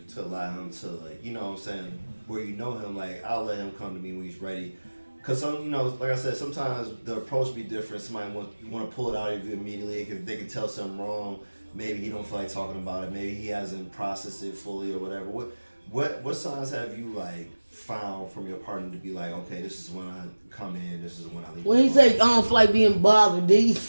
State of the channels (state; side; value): inverted; both; correlation -1.00